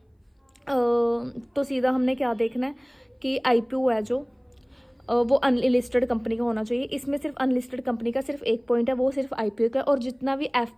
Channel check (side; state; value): both; identical; correlation 1.00